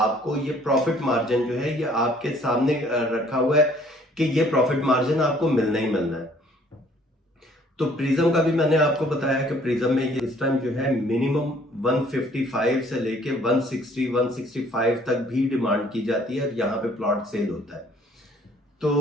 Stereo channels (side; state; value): both; normal; correlation 0.59